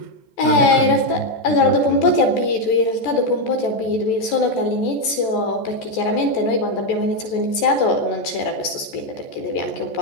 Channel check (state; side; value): late; right; 14 ms